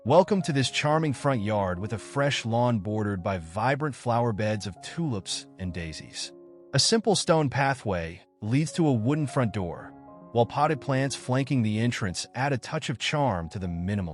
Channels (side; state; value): both; identical; correlation 1.00